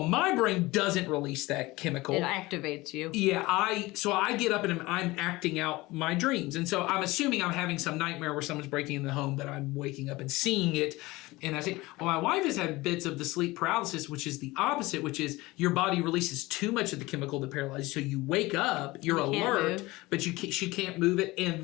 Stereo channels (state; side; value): quieter; right; 20.6 dB